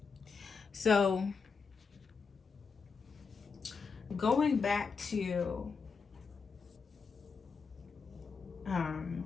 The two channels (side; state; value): right; quieter; 5.2 dB